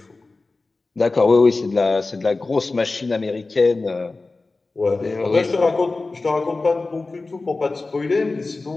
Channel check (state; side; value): quieter; right; 3.5 dB